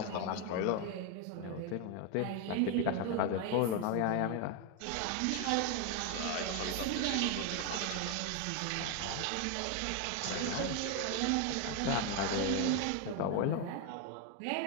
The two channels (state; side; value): different; both; correlation 0.01